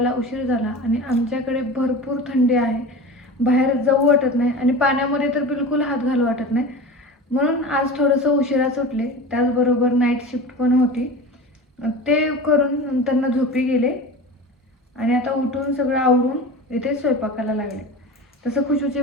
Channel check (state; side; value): normal; both; correlation 0.32